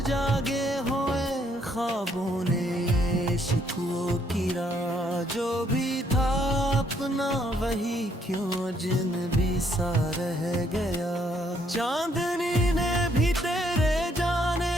जागे हुए ख्वाबों ने शिकवों की राह, जो भी था अपना वही क्यों जिनबी सा रह गया। चांदनी ने भी तेरे जाने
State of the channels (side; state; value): both; normal; correlation 0.69